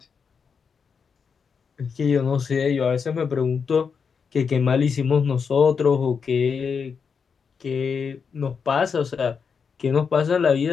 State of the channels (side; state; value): right; quieter; 6.0 dB